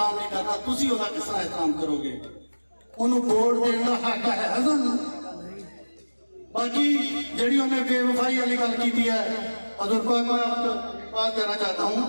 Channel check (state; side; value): inverted; both; correlation -1.00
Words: नहीं करना, तुसीं ओहदा किस तरह एहतराम करोगे? उन्होंने वोट देने का हक है सानूं। बाकी जिहड़ी उन्हें बेवफाई वाली गल की है, हज़ूर पाक मैं आपको बात कहना चाहता हूँ